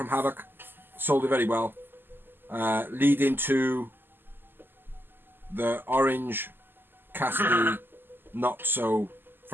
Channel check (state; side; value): late; left; 0.096 ms